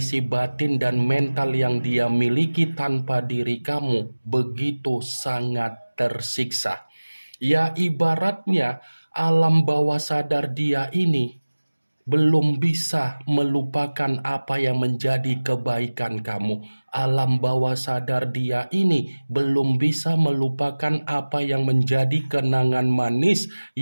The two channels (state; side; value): inverted; both; correlation -1.00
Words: batin dan mental yang dia miliki tanpa diri kamu begitu sangat tersiksa. Ya, ibaratnya alam bawah sadar dia ini belum bisa melupakan apa yang menjadi kebaikan kamu. Alam bawah sadar dia ini belum bisa melupakan apa yang menjadi kenangan manis